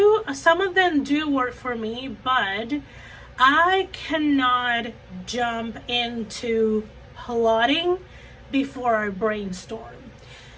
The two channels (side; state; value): both; identical; correlation 1.00